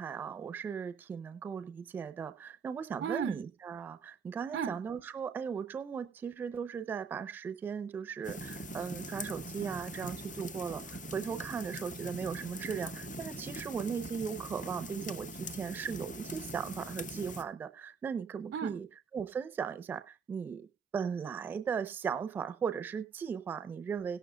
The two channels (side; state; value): left; quieter; 5.6 dB